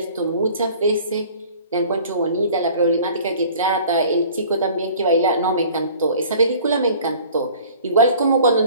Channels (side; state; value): both; inverted; correlation -0.49